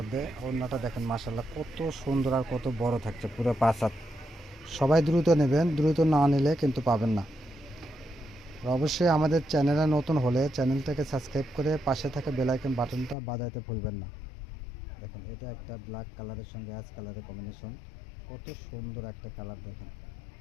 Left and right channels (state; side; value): drops out; right; at 13.2 s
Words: ওড়নাটা দেখেন মাশাআল্লাহ কত সুন্দর আর কত বড় থাকছে, পুরো 5 হাত। সবাই দ্রুত নেবেন, দ্রুত না নিলে কিন্তু পাবেন না। আর অবশ্যই আমাদের চ্যানেলে নতুন হলে চ্যানেলটাকে সাবস্ক্রাইব করে পাশে থাকা বেল আইকন বাটনটা বাজাইতে ভুলবেন না। দেখেন এটা একটা ব্ল্যাক কালারের সঙ্গে অ্যাশ কালারের কম্বিনেশন, কত সুন্দর একটা কালার। দেখেন